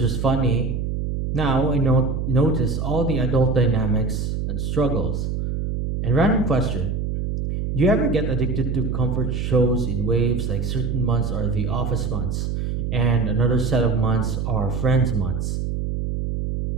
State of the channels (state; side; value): noise; right; hum, 2 dB below the sound